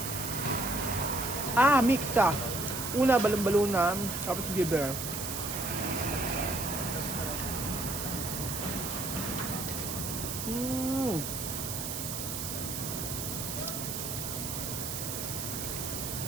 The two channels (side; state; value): right; noise; hiss, 4 dB below the sound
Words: Mix siya. Una, balon-balunan. Tapos liver.